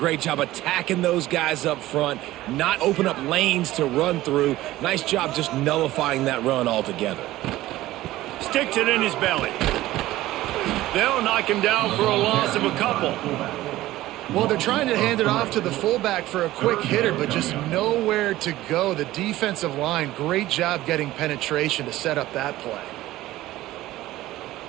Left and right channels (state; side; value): quieter; left; 16.1 dB